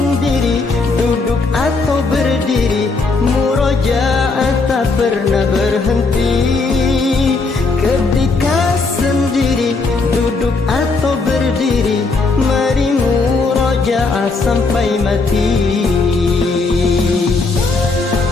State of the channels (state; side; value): quieter; right; 3.9 dB